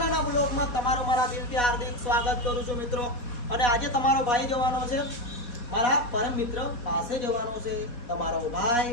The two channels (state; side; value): late; right; 4.2 ms